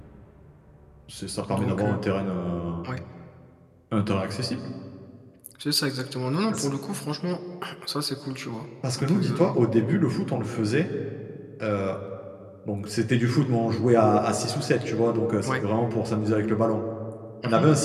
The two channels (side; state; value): both; identical; correlation 1.00